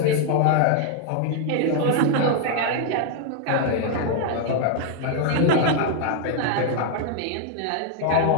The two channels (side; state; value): both; different; correlation 0.00